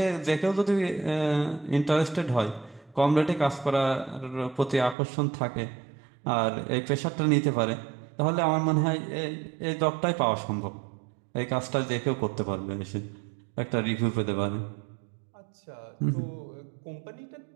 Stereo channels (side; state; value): left; drops out; at 5.0 s